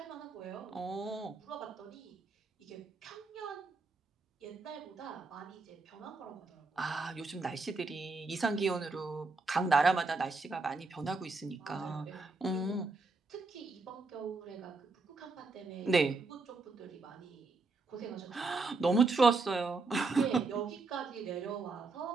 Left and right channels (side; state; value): left; quieter; 3.8 dB